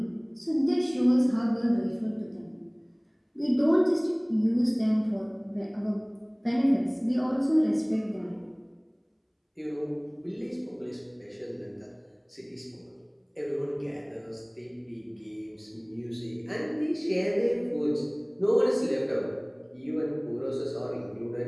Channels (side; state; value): both; identical; correlation 1.00